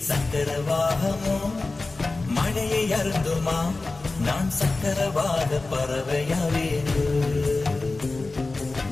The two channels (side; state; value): right; quieter; 3.4 dB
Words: சக்கரவாகமோ மழையை அருந்துமா, நான் சக்கரவாக பறவையாவேனோ.